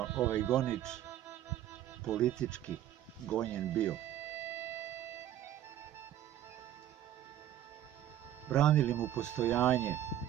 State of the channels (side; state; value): left; quieter; 11.9 dB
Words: ovaj gonič politički gonjen bio. Branili mu postojanje